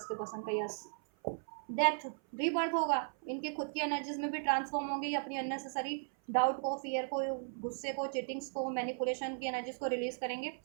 के पसंद का, यस, डेथ, रीबर्थ होगा, इनकी खुद की एनर्जीज में भी ट्रांसफॉर्म होंगे, ये अपनी अननेसेसरी डाउट को, फियर को, गुस्से को, चीटिंग्स को, मैनिपुलेशन की एनर्जीज को रिलीज करेंगे,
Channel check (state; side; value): silent; left; 53 dB below the other